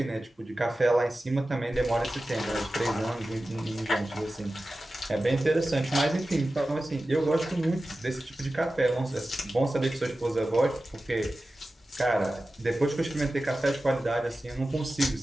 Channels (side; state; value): both; normal; correlation 0.95